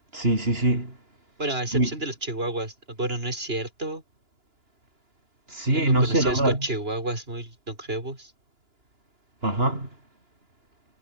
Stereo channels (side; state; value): left; late; 2.9 ms